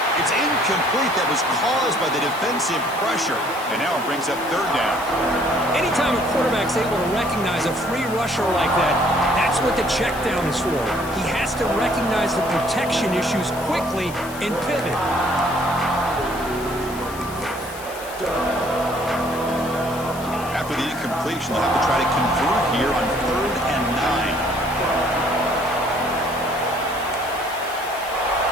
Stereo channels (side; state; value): left; noise; hiss, 15 dB below the sound